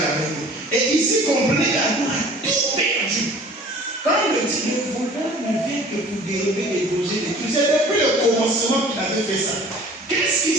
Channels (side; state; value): both; normal; correlation 0.48